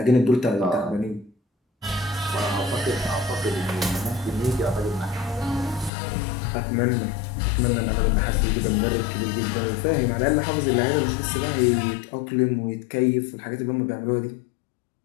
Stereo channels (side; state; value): right; drops out; at 5.9 s